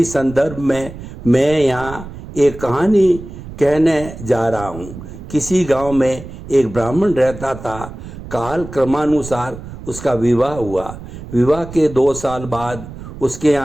संदर्भ में मैं यहाँ एक कहानी कहने जा रहा हूँ। किसी गांव में एक ब्राह्मण रहता था। काल क्रमानुसार उसका विवाह हुआ। विवाह के 2 साल बाद उसके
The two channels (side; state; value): right; noise; rumble, 13 dB below the sound